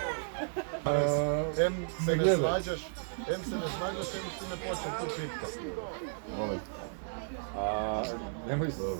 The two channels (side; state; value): left; silent; 55 dB below the other